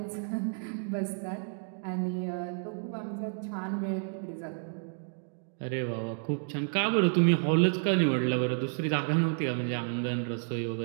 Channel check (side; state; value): left; silent; 57 dB below the other